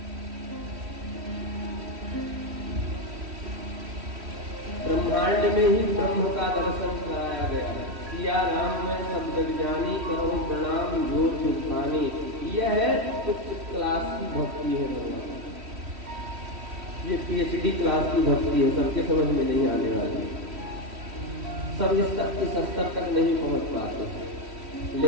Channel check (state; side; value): late; left; 3.1 ms